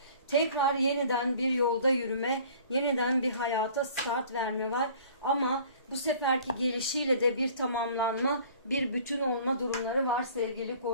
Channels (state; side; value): inverted; both; correlation -0.50